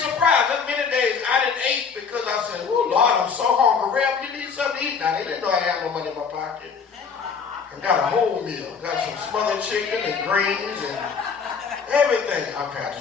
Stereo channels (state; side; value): quieter; right; 5.8 dB